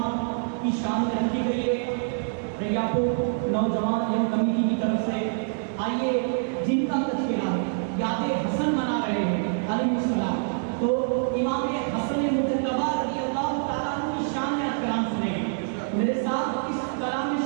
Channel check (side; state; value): left; silent; digital silence